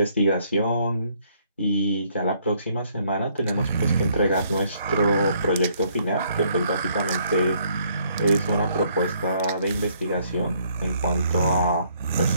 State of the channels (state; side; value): inverted; both; correlation -0.67